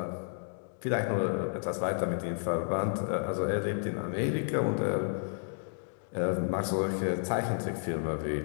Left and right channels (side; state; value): right; silent; digital silence